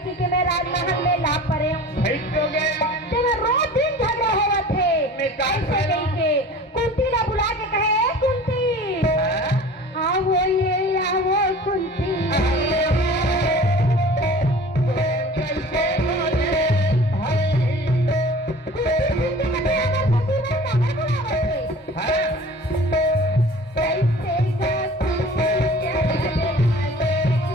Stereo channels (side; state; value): both; normal; correlation 0.43